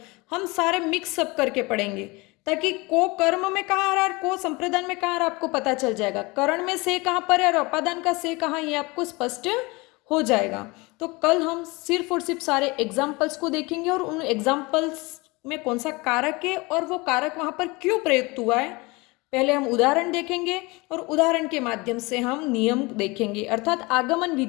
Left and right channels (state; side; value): quieter; right; 24.7 dB